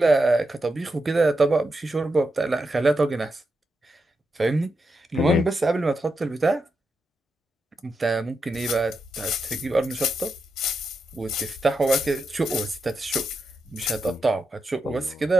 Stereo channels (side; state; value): both; normal; correlation 0.86